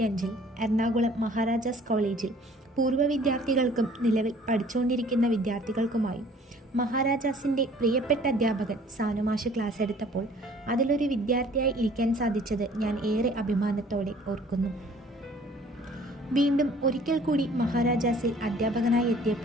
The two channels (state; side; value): normal; both; correlation 0.53